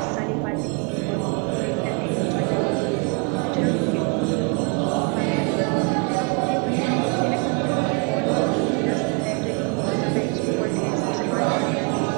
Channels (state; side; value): quieter; left; 33.9 dB